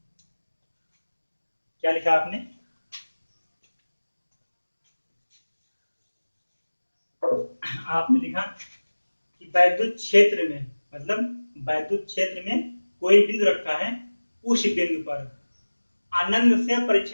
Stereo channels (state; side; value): inverted; both; correlation -1.00